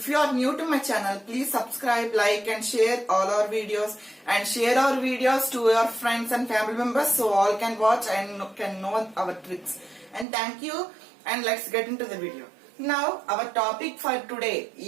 you are new to my channel, please subscribe, like and share all our videos and share our videos to your friends and family members so all can watch and can know our tricks. And thank you, and let's get into the video. Now our topic for today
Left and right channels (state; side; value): drops out; left; at 10.2 s